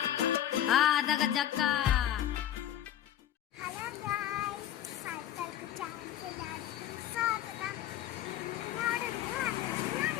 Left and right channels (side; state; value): right; quieter; 11.8 dB